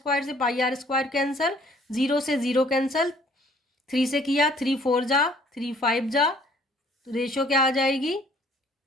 से पाई आर स्क्वायर कैंसिल, 0 से 0 कैंसिल, 3 से किया 3 4 जा, 3 5 जा, तो रेशो क्या आ जाएगी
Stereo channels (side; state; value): both; normal; correlation 0.58